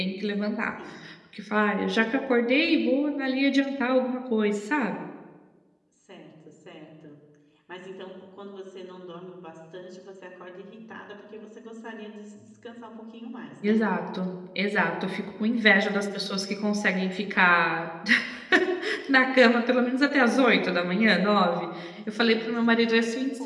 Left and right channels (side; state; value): both; identical; correlation 1.00